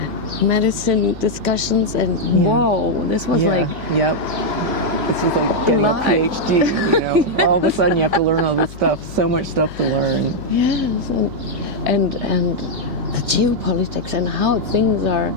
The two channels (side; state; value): left; noise; hum, 15 dB below the sound